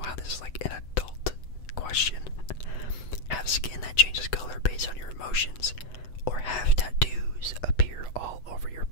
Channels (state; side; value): late; right; 8.0 ms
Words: how this is like an adult question. Have skin that changes color based on your emotions, or have tattoos appear all over your